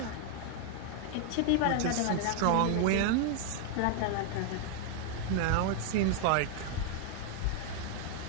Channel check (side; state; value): both; different; correlation 0.00